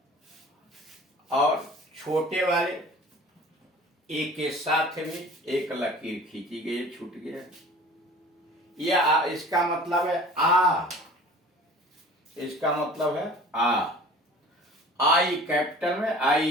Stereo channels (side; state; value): both; normal; correlation 0.45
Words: और छोटे वाले ए के साथ भी एक लकीर खींची गई है, छूट गया। यह इसका मतलब है आ, इसका मतलब है आ। आई कैपिटल में,